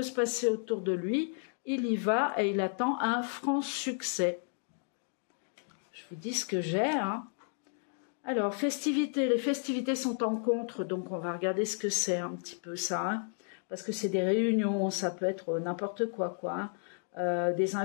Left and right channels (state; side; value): silent; right; 56 dB below the other